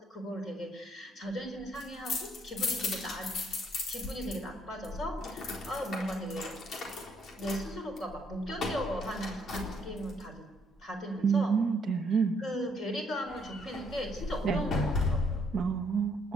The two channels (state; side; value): normal; both; correlation 0.70